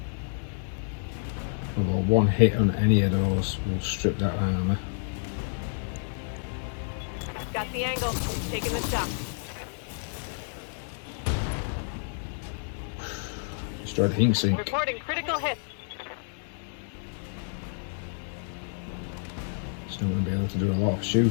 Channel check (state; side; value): silent; right; 56 dB below the other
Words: Although one hit on any of those will strip that armour. the angle. Taking the shot. Destroyed the heat sink. Reporting critical hit. Still going to be able to do a lot of